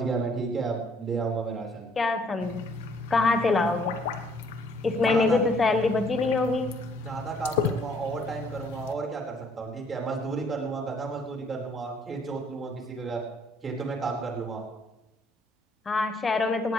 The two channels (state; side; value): normal; both; correlation 0.63